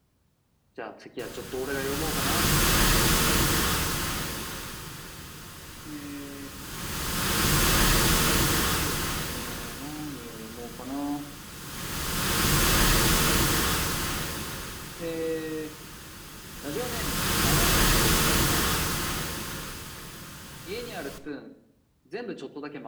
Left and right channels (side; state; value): both; identical; correlation 1.00